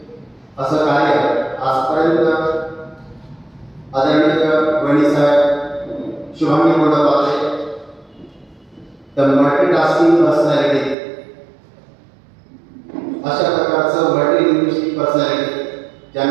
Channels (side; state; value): left; drops out; at 11.0 s